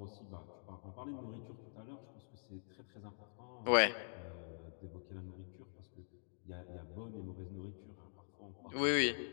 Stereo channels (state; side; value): silent; right; digital silence